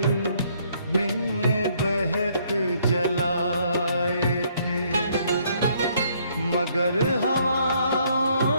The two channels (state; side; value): inverted; both; correlation -0.67